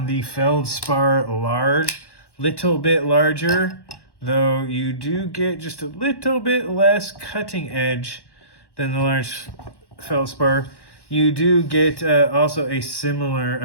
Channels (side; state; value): right; late; 1.1 ms